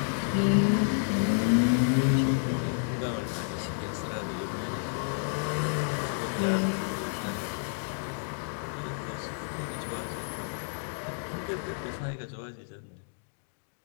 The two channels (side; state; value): right; silent; digital silence